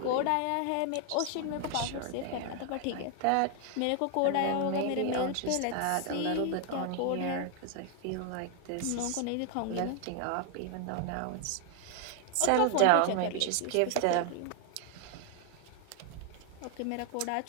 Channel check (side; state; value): both; different; correlation 0.00